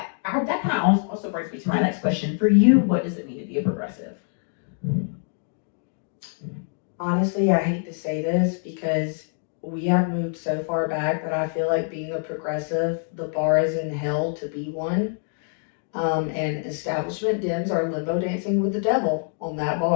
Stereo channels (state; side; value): silent; right; 58 dB below the other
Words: kind of also brings me to my next question. For you, what does it mean to be a progressive? Honestly, I hate to say this because we have moved so far back that I feel like being a progressive, the bar is in hell to be one. And establishment Dems are limbo dancing with the devil on that